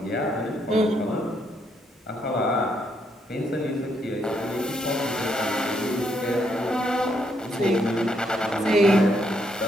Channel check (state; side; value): normal; both; correlation 0.75